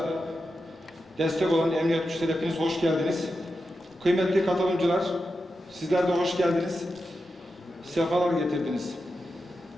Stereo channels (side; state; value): both; normal; correlation 0.89